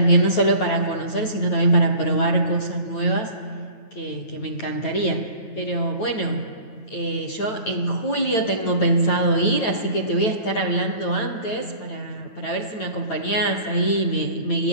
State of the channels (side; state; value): right; late; 9.3 ms